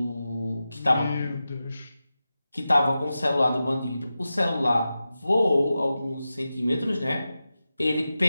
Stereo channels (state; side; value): inverted; both; correlation -0.93